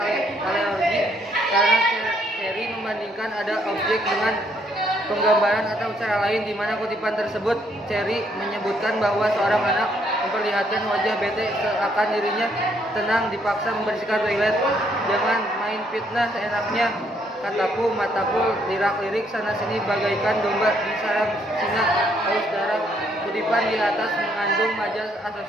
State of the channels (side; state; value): both; normal; correlation 0.70